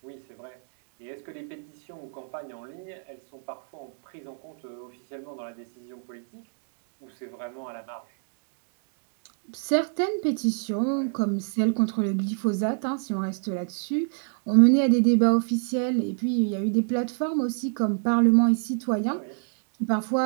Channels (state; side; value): silent; left; 60 dB below the other